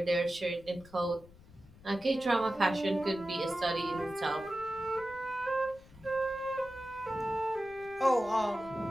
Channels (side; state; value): left; noise; rumble, 22 dB below the sound